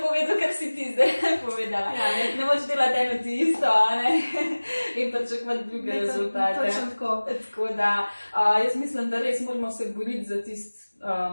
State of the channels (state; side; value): inverted; both; correlation -1.00